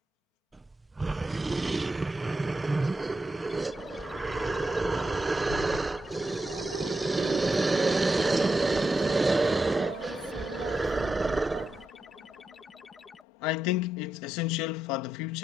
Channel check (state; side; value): normal; both; correlation 0.86